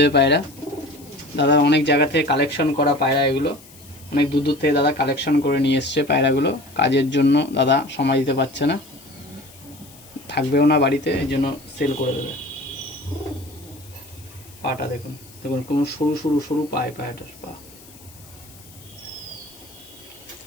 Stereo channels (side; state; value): left; noise; hiss, 22 dB below the sound